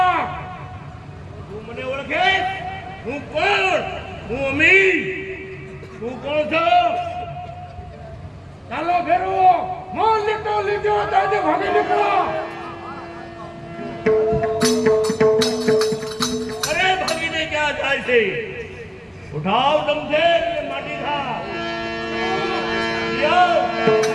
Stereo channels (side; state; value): both; identical; correlation 1.00